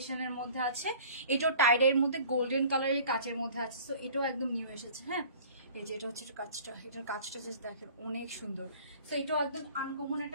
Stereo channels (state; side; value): inverted; both; correlation -0.47